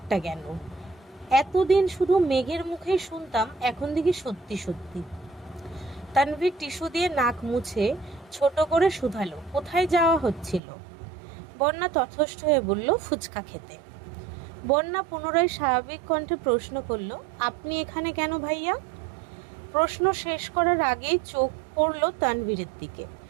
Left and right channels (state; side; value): drops out; left; at 10.6 s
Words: কেন? এতদিন শুধু মেঘের মুখেই শুনতাম, এখন দেখি সত্যি সত্যি। তানভীর টিস্যু দিয়ে নাক মুছে ছোট করে শুধালো, কোথায় যাওয়া হচ্ছিল? বন্যা তথস্থ হয়ে বলল, ফুচকা খেতে। বন্যা পুনরায় স্বাভাবিক কণ্ঠে প্রশ্ন করল, আপনি এখানে কেন ভাইয়া? প্রশ্ন শেষ করার আগেই চোখ পড়ল তানভীরের দিকে।